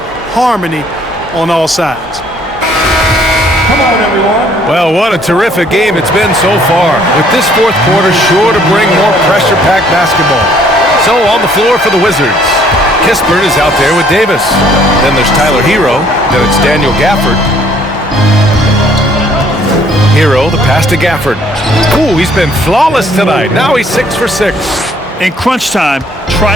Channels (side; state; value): both; normal; correlation 0.62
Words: harmony on all sides. Come on, everyone. Well, what a terrific game it's been so far. With this 4th quarter sure to bring more pressure-packed basketball. So on the floor for the Wizards. Kispert is out there with Davis. Then there's Tyler Hero. Then it's Daniel Gafford. Hero, the pass to Gafford. Ooh, he's been flawless tonight. Now he's 6 for 6. In crunch time,